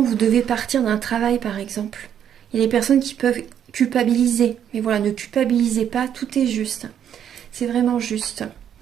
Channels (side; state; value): left; quieter; 9.4 dB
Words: vous devez partir d'un travail par exemple. Il y a des personnes qui peuvent culpabiliser. Mais voilà, ne culpabilisez pas, tout est juste. C'est vraiment juste.